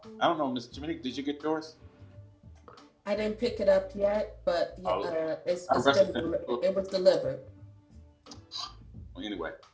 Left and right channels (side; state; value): both; identical; correlation 1.00